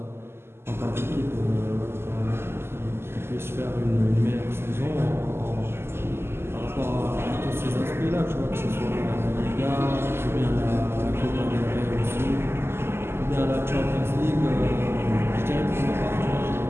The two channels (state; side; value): late; left; 0.12 ms